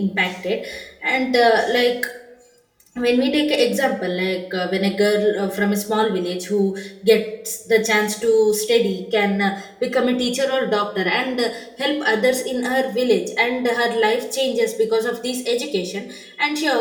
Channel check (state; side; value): identical; both; correlation 1.00